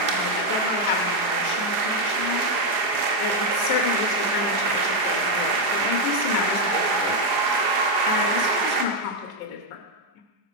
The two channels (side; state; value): left; late; 4.9 ms